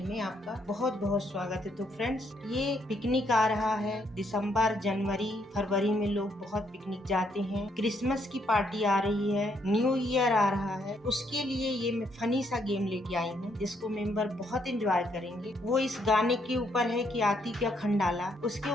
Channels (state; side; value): normal; both; correlation 0.73